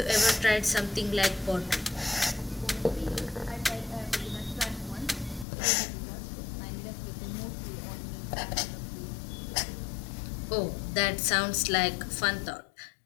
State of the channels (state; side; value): drops out; right; at 5.5 s